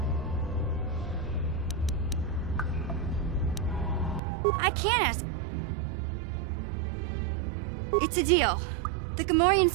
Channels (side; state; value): left; drops out; at 4.2 s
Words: I can't ask. It's a deal. The